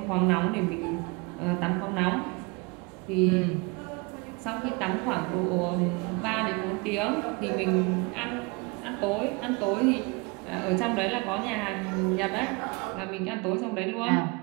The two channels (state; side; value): quieter; left; 28.8 dB